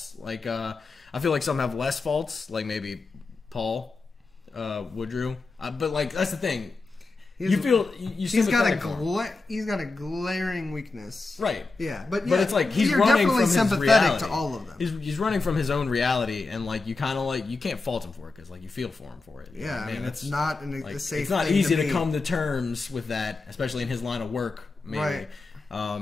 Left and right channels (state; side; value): quieter; right; 3.7 dB